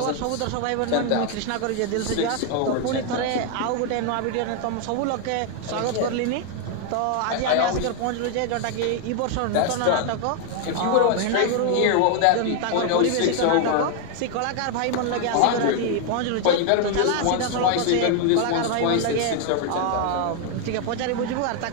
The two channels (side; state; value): both; different; correlation 0.00